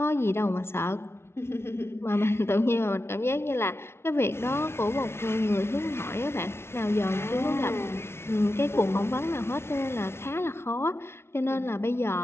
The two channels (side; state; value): right; late; 0.12 ms